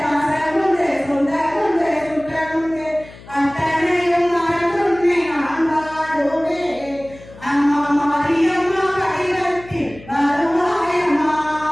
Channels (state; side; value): noise; left; hum, 19 dB below the sound